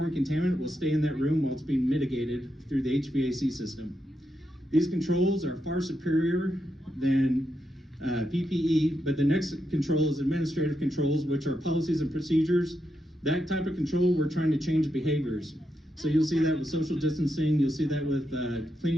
contaminant, will stay in that room while it's being mitigated through the HVAC system. These controls are far superior than PPE, but the next control is administrative controls, which are policies and procedures. That type of control, we're trying to change behaviors. So you'll see that with social distancing, you'll see that with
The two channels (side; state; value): both; normal; correlation 0.84